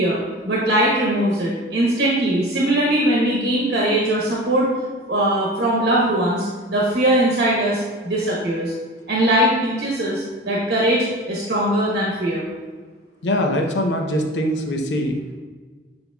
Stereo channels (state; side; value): normal; both; correlation 0.33